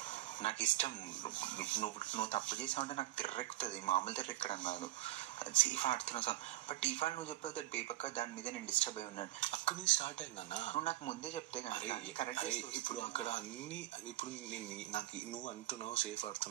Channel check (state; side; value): quieter; left; 15.8 dB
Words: నాకు ఇష్టం. నువ్వు తప్పు చేసావంటే నాకు తిర్రెక్కుతుంది, మామూలు తిర్రెక్కడం కాదు. సేఫ్ ఆడుతున్నావు సార్. బట్ ఇవాళ నువ్వు చెప్పావు దట్ బేపక్క దాని మీద నేను డిస్టర్బ్ అయి ఉన్నాను. అక్కడ నుంచి స్టార్ట్ అయిందన్నా. నువ్వు నాకు ముందే చెప్తే కానీ కరెక్ట్. ఇప్పుడు అక్కడ అన్ని ఇప్పుడు నాకు నువ్వు అంటున్నావు సేఫ్